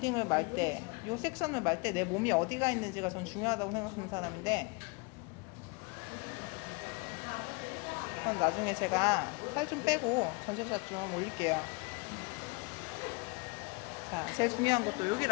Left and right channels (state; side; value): quieter; right; 29.7 dB